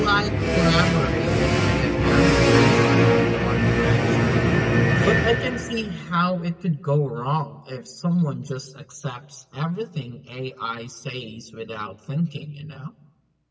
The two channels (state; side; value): identical; both; correlation 1.00